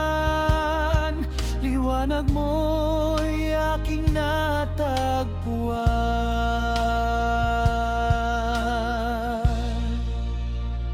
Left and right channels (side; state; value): both; identical; correlation 1.00